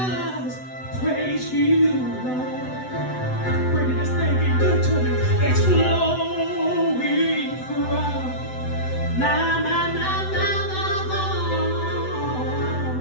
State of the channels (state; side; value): late; right; 7.9 ms